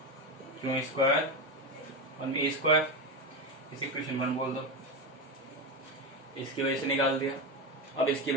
क्यू स्क्वायर और ए स्क्वायर। इसे इक्वेशन 1 बोल दो। इसकी वजह से निकाल दिया। अब इसकी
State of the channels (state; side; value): normal; both; correlation 0.15